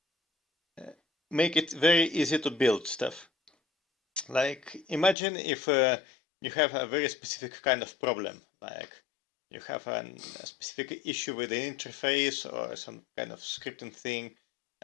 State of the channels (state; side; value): drops out; right; at 5.2 s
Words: make it very easy to build stuff. Like, imagine if you have a very specific kind of problem, like you have a specific issue with the interface or some kind of scripting thing,